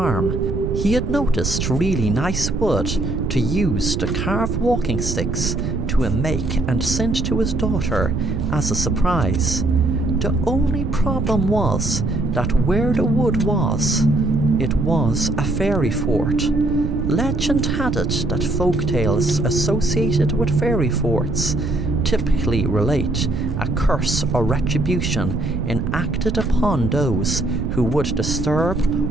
He had noticed really nice wood to use to carve walking sticks to make and send to his daughter as a surprise. The only problem was that where the wood was, it was a fairy fort. Legend had it that folk tales associated with fairy forts typically relate a curse or retribution enacted upon those who would disturb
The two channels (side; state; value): right; noise; rumble, 2 dB below the sound